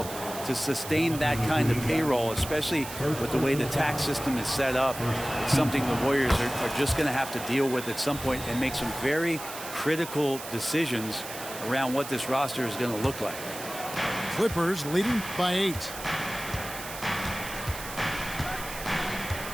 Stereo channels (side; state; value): right; noise; hiss, 11 dB below the sound